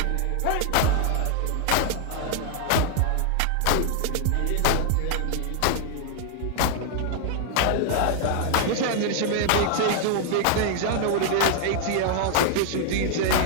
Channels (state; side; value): different; both; correlation 0.00